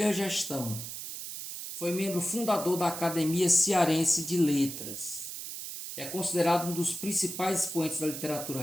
gestão. Foi membro fundador da Academia Cearense de Letras. É considerado um dos principais expoentes da literatura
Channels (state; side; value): noise; right; hiss, 8 dB below the sound